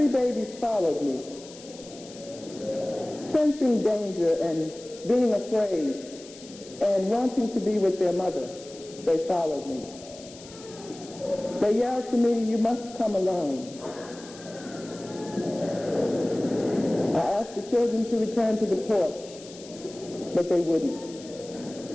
babies followed me. Sensing danger and being afraid and wanting to be with their mother, they followed me. They yelled to me, "You must come alone." I asked the children to return to the porch, but they wouldn't.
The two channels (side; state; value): left; noise; hiss, 18 dB below the sound